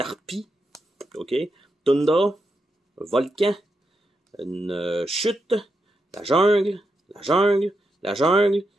ok, Tundra, volcan, une chute, la jungle, la jungle, la jungle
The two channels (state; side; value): normal; both; correlation 0.85